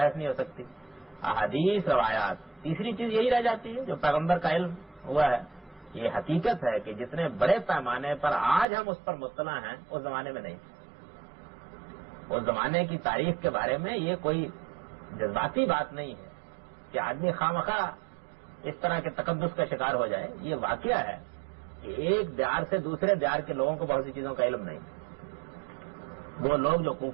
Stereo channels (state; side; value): drops out; left; at 8.7 s